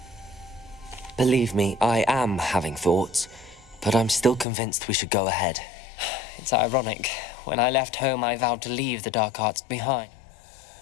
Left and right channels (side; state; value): right; drops out; at 4.5 s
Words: Believe me, I am having thoughts, but I'm still convinced we should go ahead. It's ironic. When I left home, I vowed to leave the dark arts behind.